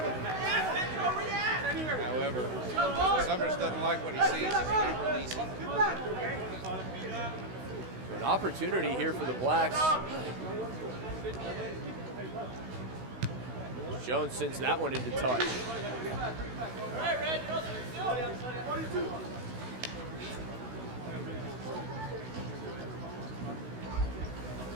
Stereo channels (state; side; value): late; left; 16 ms